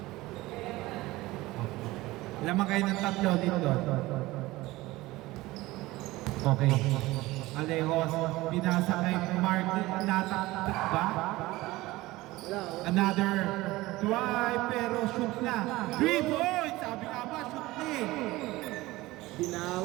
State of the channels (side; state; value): left; quieter; 19.1 dB